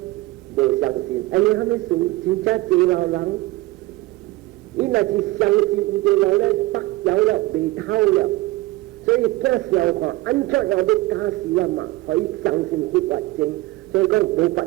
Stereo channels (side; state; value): left; quieter; 19.6 dB